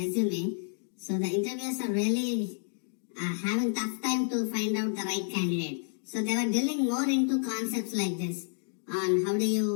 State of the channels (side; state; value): right; silent; digital silence